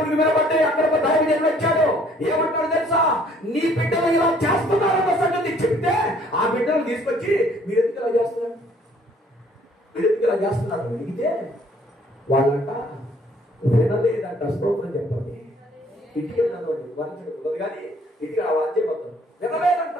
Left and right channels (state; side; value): normal; both; correlation 0.60